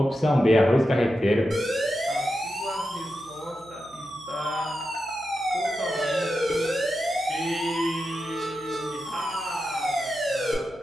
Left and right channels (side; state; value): right; noise; hum, 26 dB below the sound